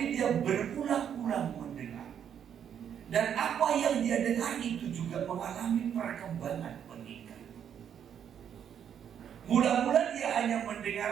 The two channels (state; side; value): quieter; left; 8.7 dB